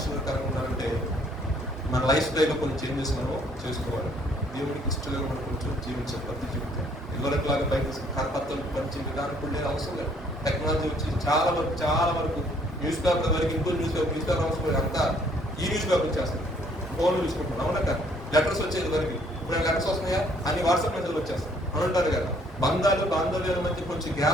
ఉన్నారంటే మన లైఫ్ స్టైల్లో కొన్ని చేంజెస్ మనం చేసుకోవాలి. దేవుడికి ఇష్టంగా మనం కొంచెం జీవించాలి. ప్రతి జీవితం ఇదివరకులాగా బయట కరపత్రాలు పంచి విధానం కూడా లేదు, అవసరం లేదు. టెక్నాలజీ వచ్చి చాలా వరకు న్యూస్ పేపర్ వరకు ఇంకో న్యూస్ పేపర్ అవసరం లేదు. అంతా ఈ న్యూస్ పేపర్ వచ్చేస్తాయి, ఫోన్లు చూసుకుంటున్నాం. అవునా కదా? లెటర్స్ వచ్చేది వరకు ఇప్పుడు లెటర్స్ వస్తున్నాయా, అన్ని వాట్సాప్ మెసేజ్ వచ్చేస్తాయి అని అంటారు కదా. బాంధవ్యాల మధ్య కొంచెం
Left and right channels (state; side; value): normal; both; correlation 0.63